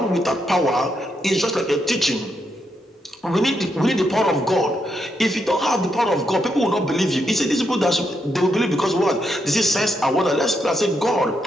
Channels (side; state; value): both; normal; correlation 0.80